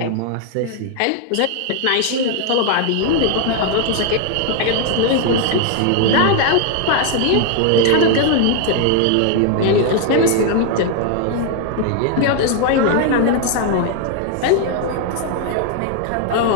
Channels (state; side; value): different; both; correlation 0.00